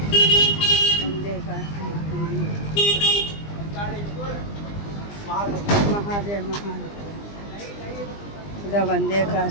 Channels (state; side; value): late; right; 20 ms